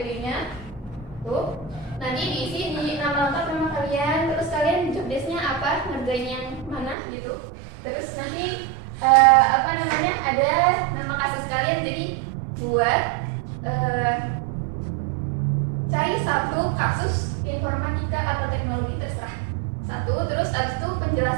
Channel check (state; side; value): drops out; left; at 7.0 s